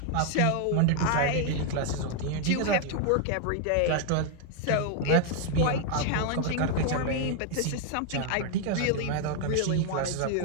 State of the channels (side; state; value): both; different; correlation 0.00